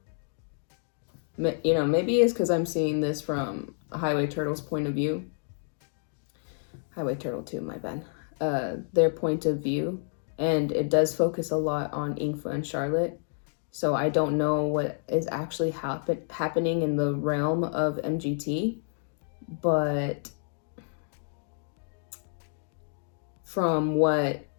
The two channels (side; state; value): right; silent; digital silence